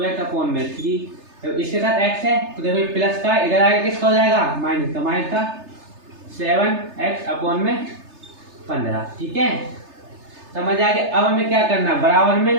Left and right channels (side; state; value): left; late; 3.3 ms